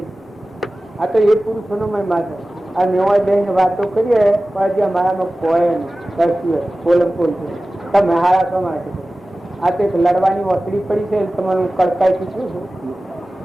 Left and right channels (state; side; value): normal; both; correlation 0.96